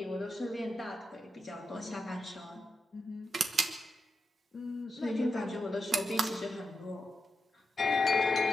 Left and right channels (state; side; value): normal; both; correlation 0.88